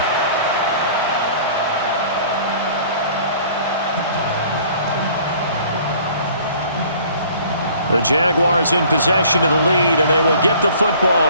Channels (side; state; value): both; inverted; correlation -0.52